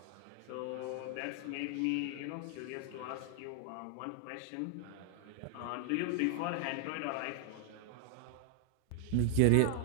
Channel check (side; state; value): both; different; correlation 0.00